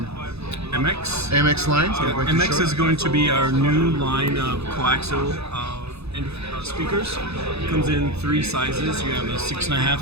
MX line. So MX is going to be our new line of coaxial speakers. It comes in three sizes. You have a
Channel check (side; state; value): left; late; 0.79 ms